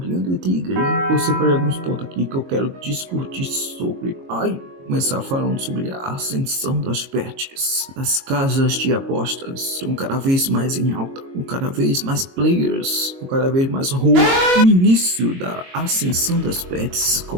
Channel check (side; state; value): left; late; 22 ms